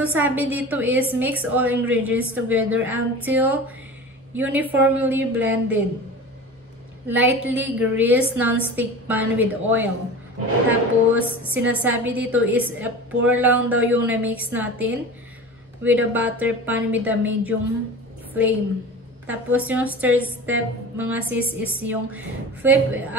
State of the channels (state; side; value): normal; both; correlation 0.34